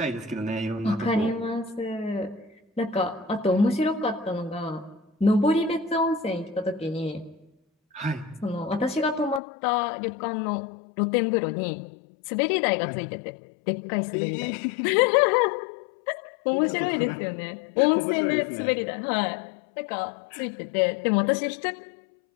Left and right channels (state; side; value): drops out; right; at 9.4 s